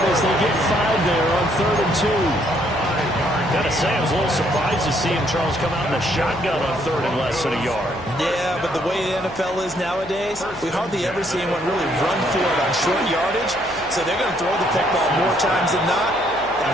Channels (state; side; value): noise; left; hum, 20 dB below the sound